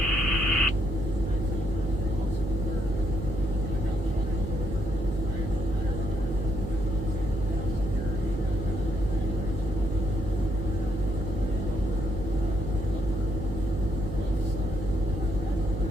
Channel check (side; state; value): right; noise; hum, 5 dB below the sound